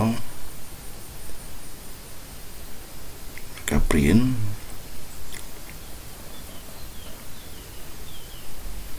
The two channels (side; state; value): both; identical; correlation 1.00